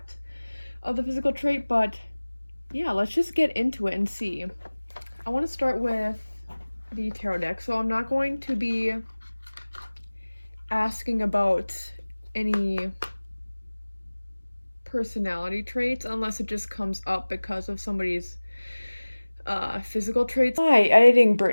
of the physical trait, but yeah, let's just get into it and see. I want to start with the tarot deck, so I'm not going to be asking about any personality traits unless it just comes up because of somebody's physical traits. Hi, editing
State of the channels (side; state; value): both; inverted; correlation -1.00